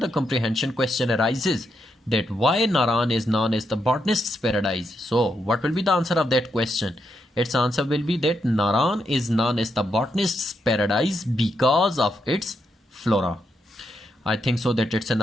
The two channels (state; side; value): normal; both; correlation 0.81